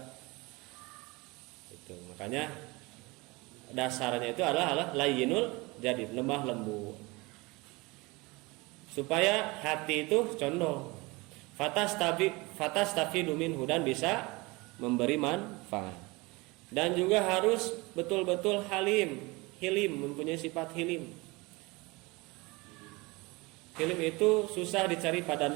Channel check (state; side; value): quieter; left; 24.3 dB